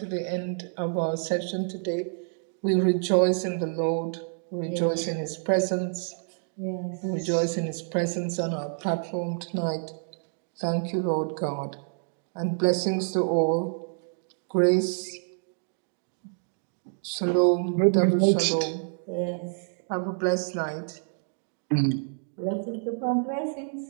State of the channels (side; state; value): left; silent; digital silence